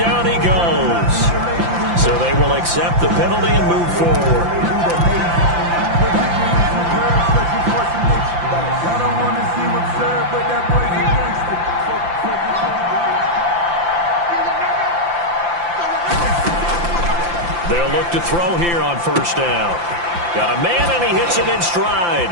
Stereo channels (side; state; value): left; late; 5.8 ms